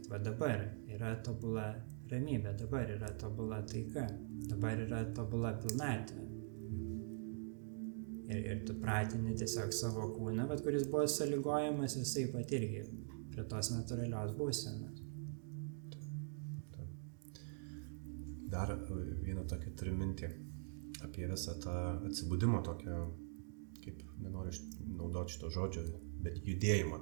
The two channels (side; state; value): left; silent; digital silence